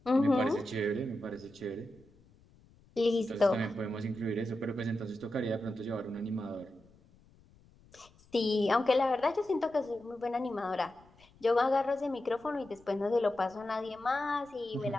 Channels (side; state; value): left; noise; rumble, 28 dB below the sound